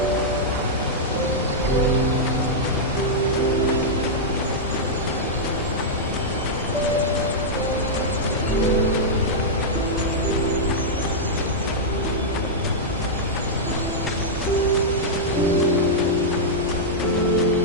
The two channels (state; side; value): normal; both; correlation -0.07